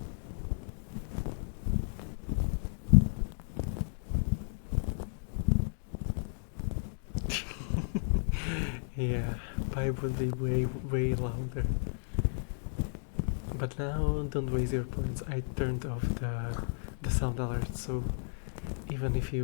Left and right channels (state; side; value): silent; right; digital silence